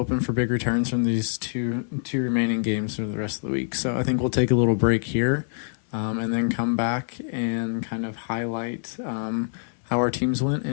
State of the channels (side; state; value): right; silent; 62 dB below the other